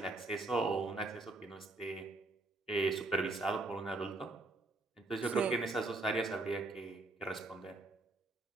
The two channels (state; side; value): quieter; left; 3.0 dB